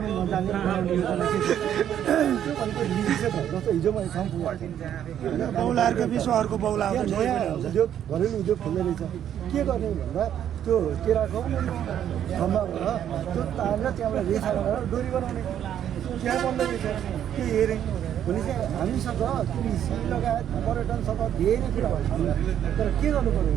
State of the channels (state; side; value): quieter; left; 10.1 dB